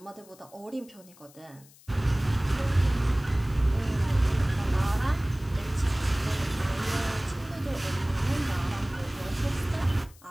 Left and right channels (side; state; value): left; noise; hiss, 25 dB below the sound